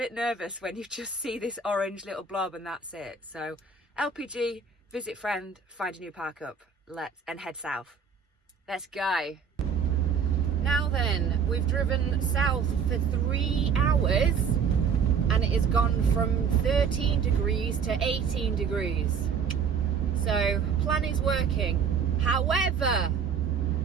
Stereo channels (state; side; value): quieter; left; 6.3 dB